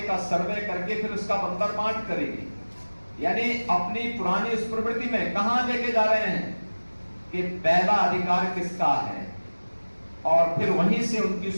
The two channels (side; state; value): both; inverted; correlation -1.00